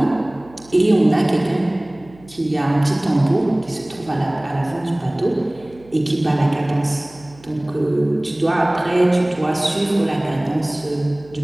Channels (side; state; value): right; noise; hum, 25 dB below the sound